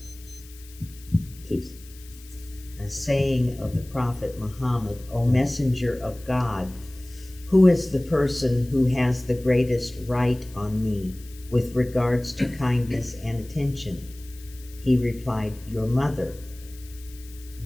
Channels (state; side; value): noise; left; hiss, 22 dB below the sound